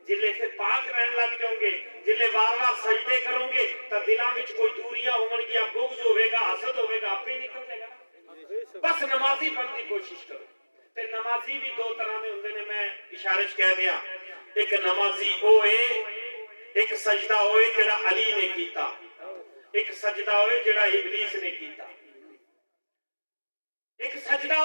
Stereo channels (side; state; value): both; inverted; correlation -1.00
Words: جلے سے پاک رہن لگ جاؤ گے، جلے بار بار سجدے کرو گے تو دلاں وچ کوئی دوریاں ہون گیا، بغض ہوے گا، حسد ہوے گا، آپ ہی نکل جائے گا۔ بس نمازی بن کی کوشش کرو۔ تے نمازی بھی 2 طرح دے ہوندے نے، میں اشارے وچ کہہ دیا، ایک نمازی او اے، ایک سجدہ ہوئے جڑا علی نے کیتا، ایک سجدہ ہوئے جڑا ابلیس نے کیتا۔ ایک سجدہ